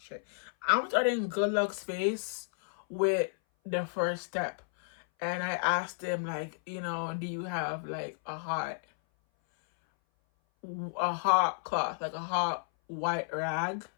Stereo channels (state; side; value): silent; right; 56 dB below the other